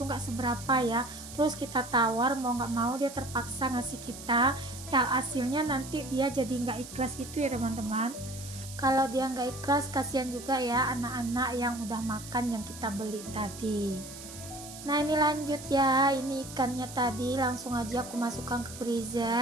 nggak seberapa ya. Terus kita tawar mau nggak mau dia terpaksa ngasih kita, ya hasilnya nanti dia jadi nggak ikhlas gitu ya teman-teman. Kalau dia nggak ikhlas, kasihan juga ya anak-anak yang udah makan yang kita beli tadi. Nah, ini lanjut ya, ini ikannya tadi langsung aja aku masukkan ke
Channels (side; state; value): right; noise; hiss, 13 dB below the sound